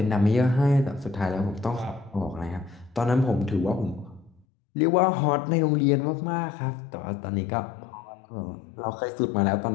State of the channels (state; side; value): drops out; right; at 4.5 s